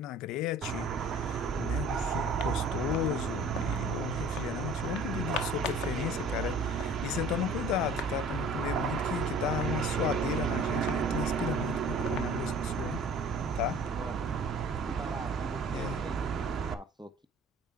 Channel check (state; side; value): normal; both; correlation 0.47